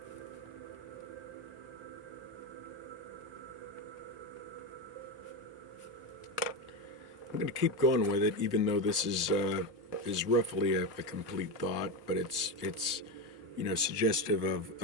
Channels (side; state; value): both; normal; correlation 0.14